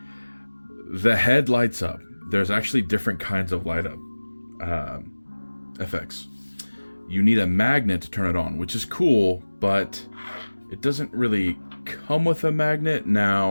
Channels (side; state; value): both; inverted; correlation -1.00